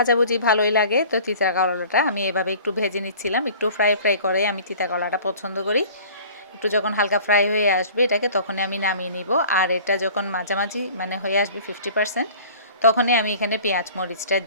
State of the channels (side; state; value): both; inverted; correlation -0.46